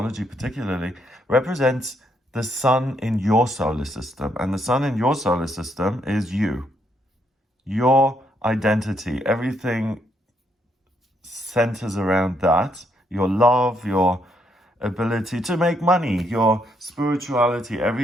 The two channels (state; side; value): normal; both; correlation 0.75